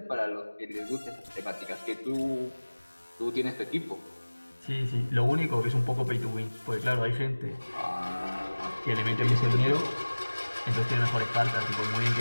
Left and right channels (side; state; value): both; inverted; correlation -1.00